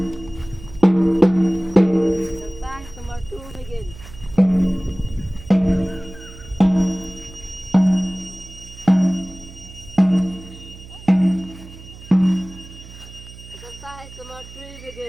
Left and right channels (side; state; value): right; noise; hum, 17 dB below the sound